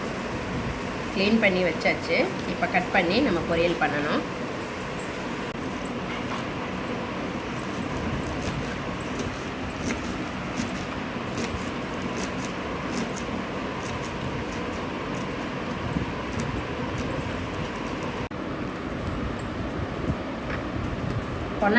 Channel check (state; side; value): identical; both; correlation 1.00